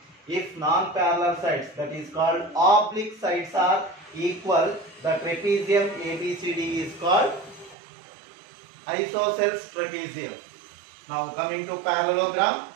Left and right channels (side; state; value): left; drops out; at 7.8 s